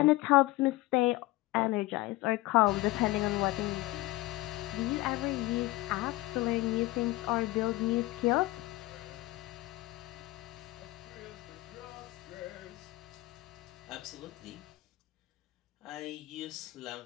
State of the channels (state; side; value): quieter; right; 19.2 dB